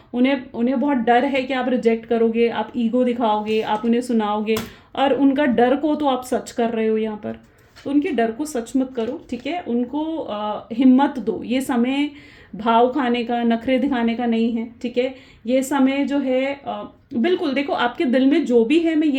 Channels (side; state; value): both; identical; correlation 1.00